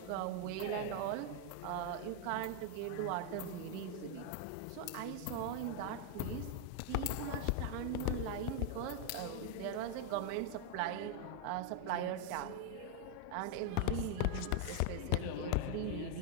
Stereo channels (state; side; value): different; both; correlation 0.01